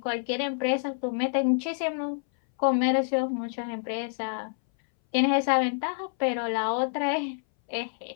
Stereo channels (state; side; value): silent; right; 60 dB below the other